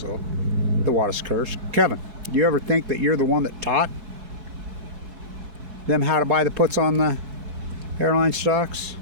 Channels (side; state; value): left; late; 4.6 ms